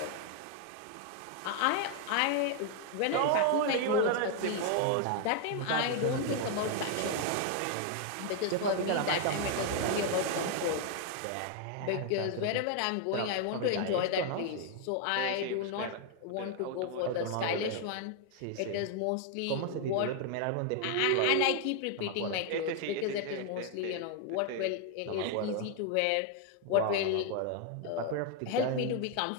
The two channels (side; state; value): both; different; correlation 0.00